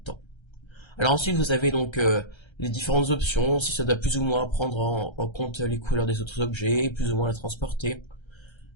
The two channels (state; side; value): late; right; 1.3 ms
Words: Alors ensuite vous avez donc les différentes options, si ça doit plus ou moins prendre en compte les couleurs des autres objets, plus ou moins la transporter.